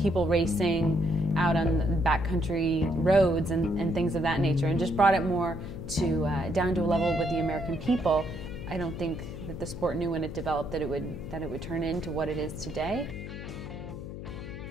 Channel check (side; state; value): left; noise; hum, 10 dB below the sound